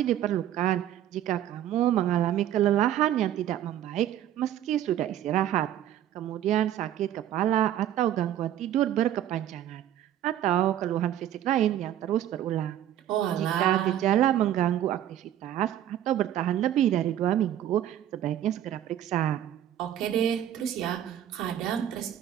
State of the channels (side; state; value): left; quieter; 11.6 dB